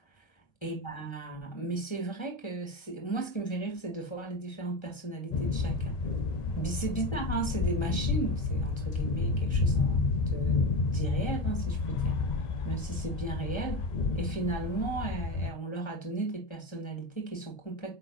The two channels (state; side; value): late; right; 1.3 ms